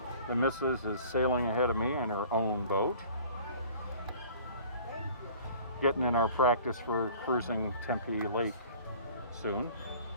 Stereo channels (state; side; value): inverted; both; correlation -0.48